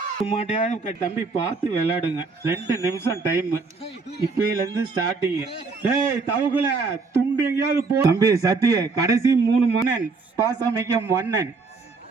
மாட்டையாவது தம்பி பார்த்து விளையாடுங்க. 2 நிமிஷம் டைம் இப்பையில இருந்து ஸ்டார்டிங். டேய் தவக்குல துண்டு எங்கேயாவது போ தம்பி. சத்திய கடைசி 3 மன்னன் பாசமிக்க மன்னன்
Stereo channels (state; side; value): quieter; left; 4.3 dB